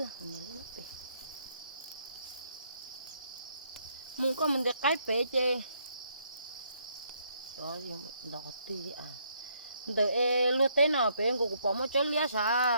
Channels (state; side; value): inverted; both; correlation -0.71